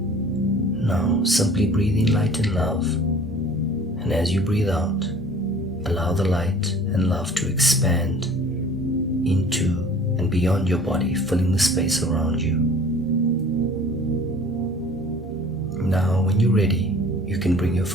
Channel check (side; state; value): both; normal; correlation 0.47